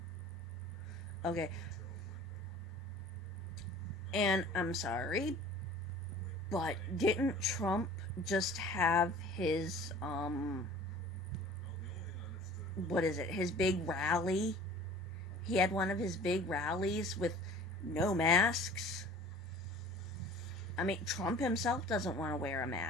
Okay. And I'm sorry, but didn't Trump just have his, his big rally? He had one of his big rallies with no masks. I mean, Trump himself doesn't want to wear a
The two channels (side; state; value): both; normal; correlation 0.45